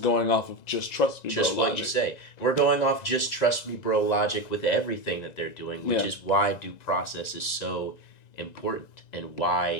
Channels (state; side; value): late; right; 1.9 ms